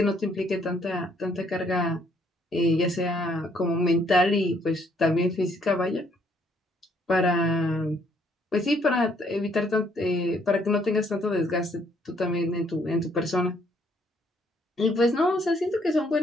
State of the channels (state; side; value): normal; both; correlation 0.67